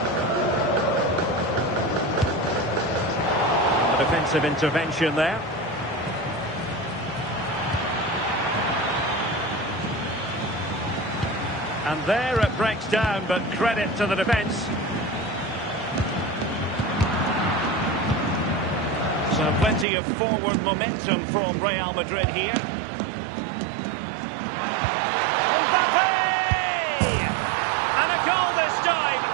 Defensive intervention there. And there it breaks down, but credit to the defence. So plenty of forward momentum from Real Madrid here. Mbappe! And a goal this time.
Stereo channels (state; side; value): drops out; left; at 19.9 s